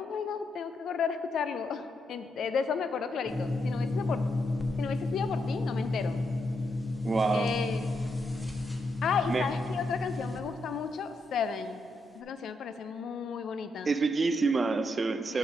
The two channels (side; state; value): both; normal; correlation 0.81